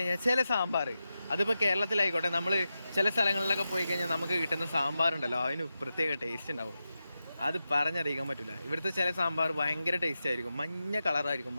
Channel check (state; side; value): inverted; both; correlation -0.91